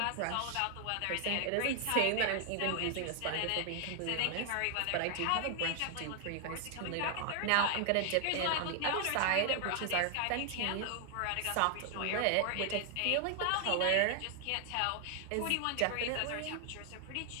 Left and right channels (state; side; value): different; both; correlation 0.00